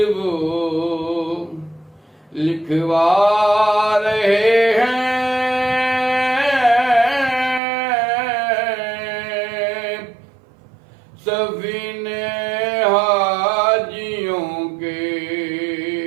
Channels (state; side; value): drops out; left; at 7.6 s